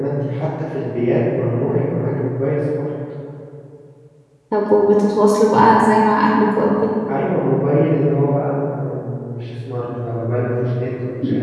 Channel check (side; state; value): both; identical; correlation 1.00